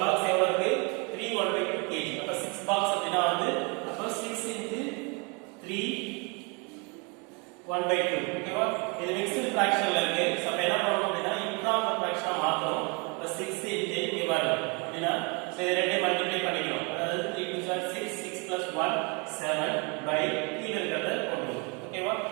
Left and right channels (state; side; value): quieter; left; 31.8 dB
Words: பாக்ஸ் எவ்வளோ இருக்கு? 3 1/2 kg. அப்போ 6 பாக்ஸ் அப்படின்னா வந்து அப்போ 6 into 3 1 by 2 ஓகேவா இது மிக்ஸ்டு ஃபிராக்ஷன்ல இருக்கு சோ அப்ப என்ன பண்ணனும் அப்படினா இம்ப்ராப்பர் ஃபிராக்ஷனா மாத்தணும் இப்ப 6 இன்டு இங்க பாருங்க அப்படினா சோ இது ரெண்டையும் மல்டிப்ளை பண்ணிக்கணும் அதாவது 3 2 6 6 plus 1 7 by கீழ இருக்கறத போடுவோம் ஓகேவா